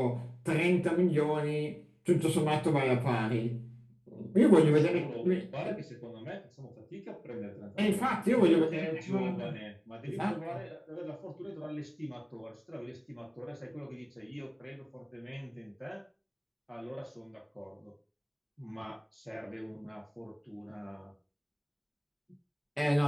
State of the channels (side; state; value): both; identical; correlation 1.00